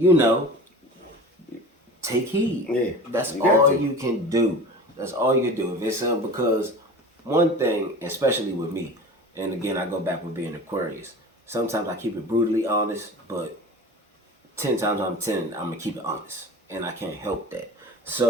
take heed. Yeah, that's all you can do. That's all you can do. If it's because one thing, especially with me, and again, I go back with being Aquarius, sometimes I keep it brutally honest, but 10 times out of 10, I'm going to keep it honest. And I can't help that.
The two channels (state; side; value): normal; both; correlation 0.36